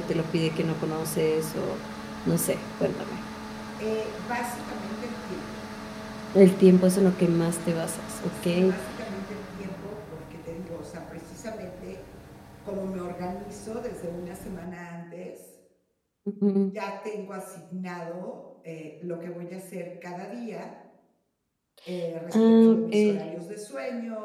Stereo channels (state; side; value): identical; both; correlation 1.00